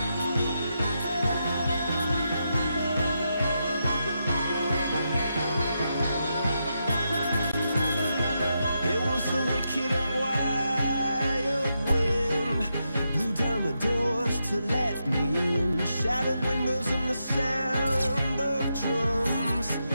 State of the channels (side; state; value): both; inverted; correlation -0.84